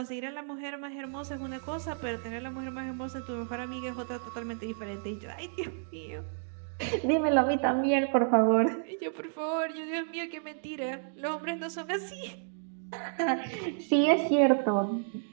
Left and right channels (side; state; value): left; silent; digital silence